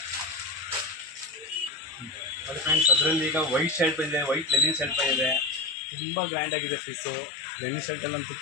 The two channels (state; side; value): drops out; right; at 5.8 s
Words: ಅದರಲ್ಲಿ ಈಗ ವೈಟ್ ಶರ್ಟ್ ಬಂದಿದೆ, ವೈಟ್ ಲೆನಿನ್ ಶರ್ಟ್ ಬಂದಿದೆ. ತುಂಬ ಗ್ರ್ಯಾಂಡಾಗಿದೆ ಪೀಸು. ಲೆನಿನ್ ಶರ್ಟಲ್ಲಂತೂ